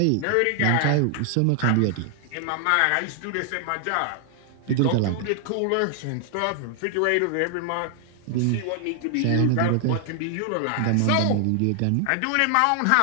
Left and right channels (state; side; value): different; both; correlation 0.00